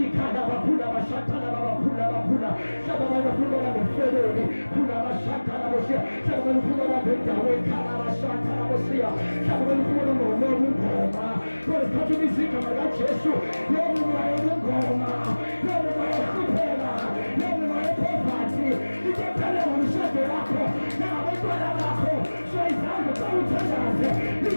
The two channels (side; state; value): both; inverted; correlation -1.00